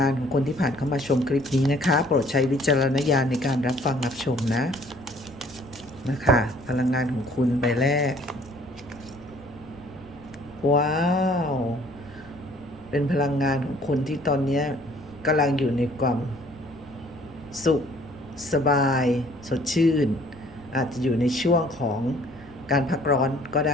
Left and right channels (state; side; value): noise; left; rumble, 25 dB below the sound